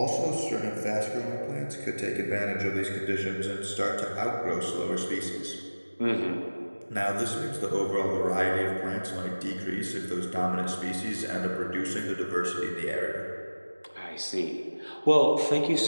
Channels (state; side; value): inverted; both; correlation -1.00